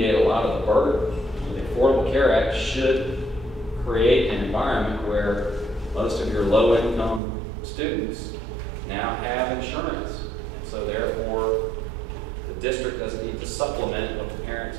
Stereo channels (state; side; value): drops out; left; at 7.2 s